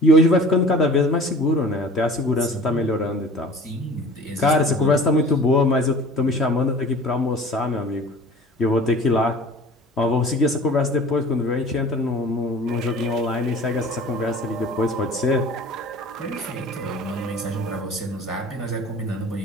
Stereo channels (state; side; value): normal; both; correlation 0.43